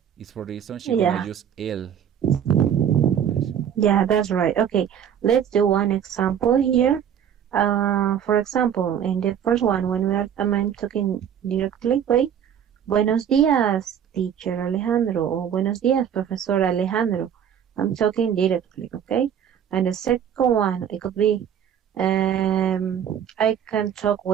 It's for the reason she's gonna use el. Yeah, that's right. Okay, let's do one example here. For example, in the first one, when I'm talking directly, wait, buenos días, teacher Alejandro, or buenos días, professor Alejandro. I'm talking directly, okay? And the second one, it could be, I can talk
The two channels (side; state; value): left; quieter; 8.9 dB